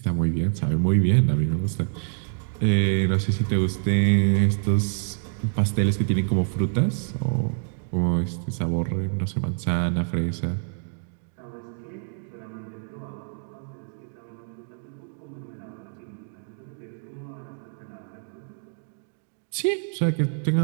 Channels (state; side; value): silent; left; digital silence